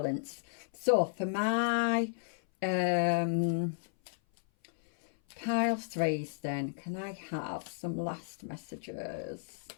So for my pile 3s then, can I have some last messages?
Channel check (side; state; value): right; silent; 55 dB below the other